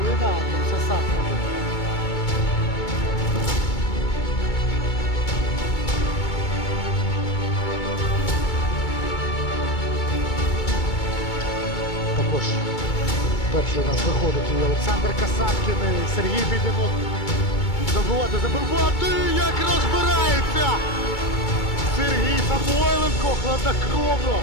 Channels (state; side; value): late; right; 2.2 ms